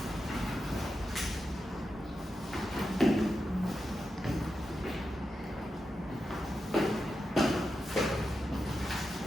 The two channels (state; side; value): normal; both; correlation 0.89